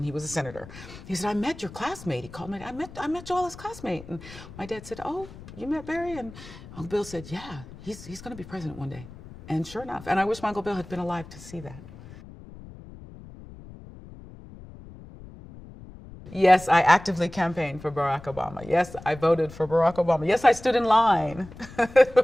he was a senator. He said, I met your classmate. He called me, I met Joella's classmate. And my dad said, oh, you met Barry? And Uncle Bill said, yeah, he's gonna be president one day. And sure enough, and I wish my Uncle Bill had been alive to see that. Yes, I actively campaigned for Barack Obama. Yes, I voted for Barack Obama. Yes, I stood in line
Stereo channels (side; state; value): left; noise; rumble, 17 dB below the sound